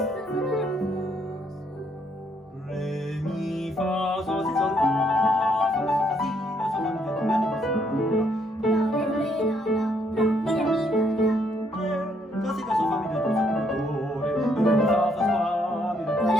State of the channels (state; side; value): normal; both; correlation 0.71